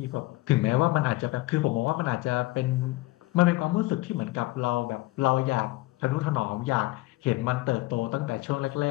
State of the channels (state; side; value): quieter; right; 19.9 dB